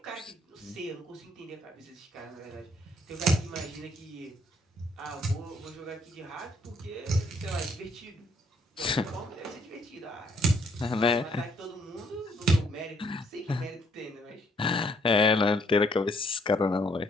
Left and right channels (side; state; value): both; normal; correlation 0.68